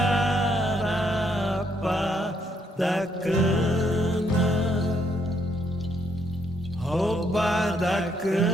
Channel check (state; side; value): normal; both; correlation 0.73